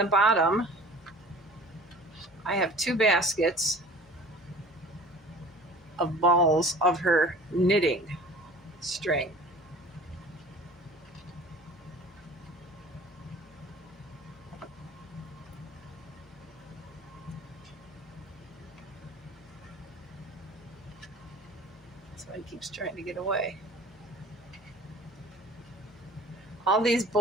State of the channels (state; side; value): normal; both; correlation 0.44